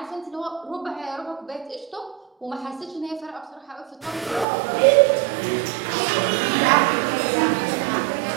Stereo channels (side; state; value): left; drops out; at 4.5 s